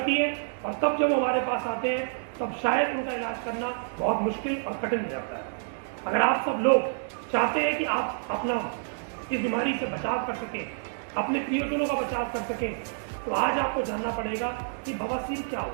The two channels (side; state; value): left; silent; digital silence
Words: है और तब जब हमारे पास आते हैं तब शायद उनका इलाज करना बहुत मुश्किल और कठिन हो जाता है। अगर आप सब लोग चाहते हैं कि आप अपना इस बीमारी से बचाव कर सकें, अपने प्रियजनों का बचाव कर सकें, तो आज आपको जानना पड़ेगा कि बवासीर क्या